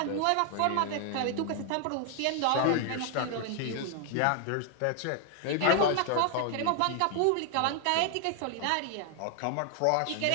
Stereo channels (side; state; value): both; different; correlation 0.00